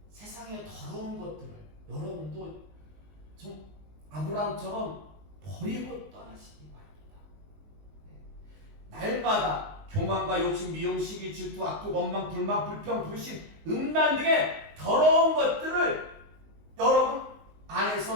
세상의 더러운 것들을 여러분도 좀 아브라함처럼 버리고 떠나시기 바랍니다. 날마다 교만과 욕심, 미움, 시기, 질투, 악독, 원망, 불만, 불평, 불신, 음란 등의 더러운 것들을 여러분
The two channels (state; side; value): late; left; 19 ms